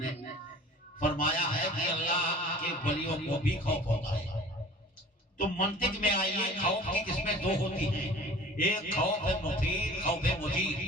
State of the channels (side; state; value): both; normal; correlation 0.44